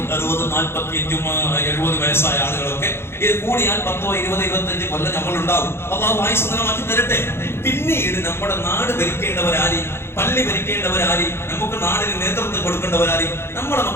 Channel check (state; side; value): late; right; 0.12 ms